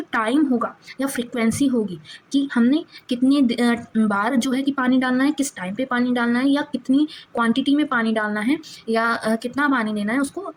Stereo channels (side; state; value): both; identical; correlation 1.00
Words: टाइम होगा या फ्रीक्वेंसी होगी कि हमने कितनी बार जो है कि पानी डालना है, किस टाइम पे पानी डालना है, या कितनी क्वांटिटी में पानी डालना है, या कितना पानी देना है, उसको